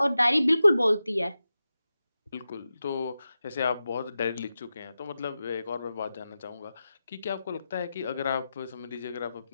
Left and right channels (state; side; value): inverted; both; correlation -0.92